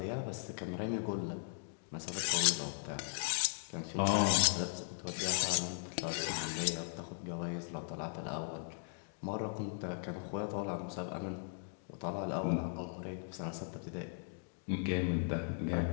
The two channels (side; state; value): right; silent; digital silence